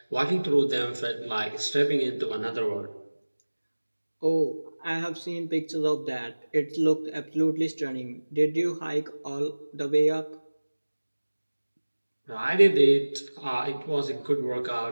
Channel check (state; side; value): inverted; both; correlation -1.00